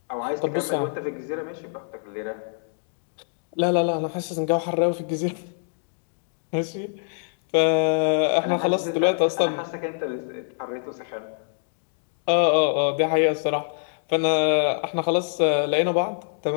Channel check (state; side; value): silent; right; digital silence